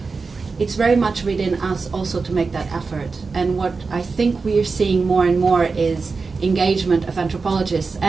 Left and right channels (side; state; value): left; quieter; 4.4 dB